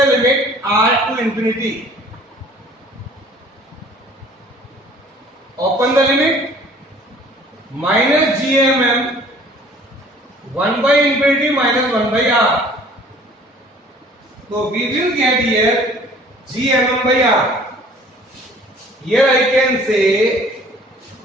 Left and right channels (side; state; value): both; normal; correlation 0.52